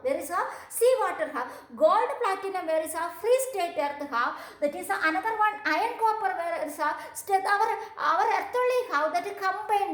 Where is how? Seawater how? Gold, platinum, where is how? Free state earth how? That is another one, iron, copper, where is how? Our earth only how? That is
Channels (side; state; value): both; identical; correlation 1.00